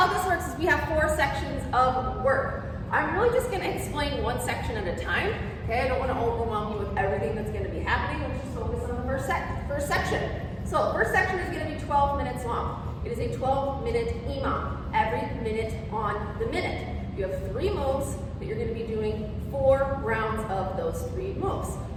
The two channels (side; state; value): both; identical; correlation 1.00